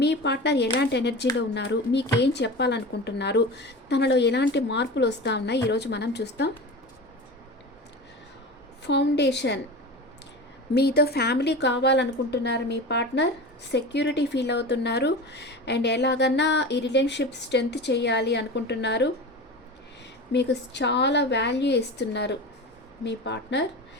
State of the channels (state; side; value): normal; both; correlation 0.30